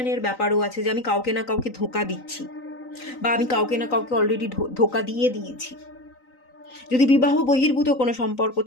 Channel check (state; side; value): late; right; 3.9 ms